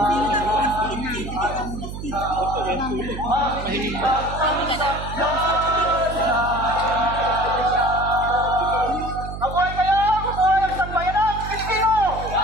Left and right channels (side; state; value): right; noise; hum, 8 dB below the sound